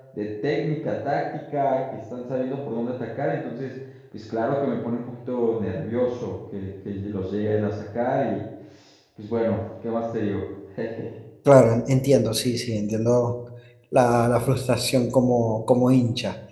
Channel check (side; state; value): both; identical; correlation 1.00